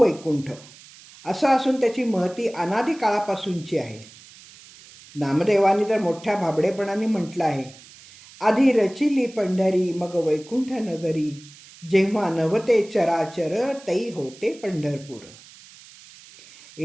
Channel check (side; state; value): right; noise; hiss, 21 dB below the sound